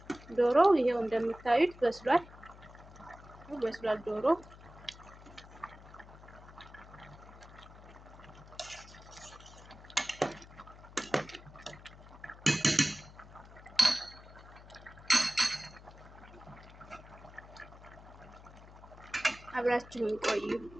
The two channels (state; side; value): noise; left; hum, 19 dB below the sound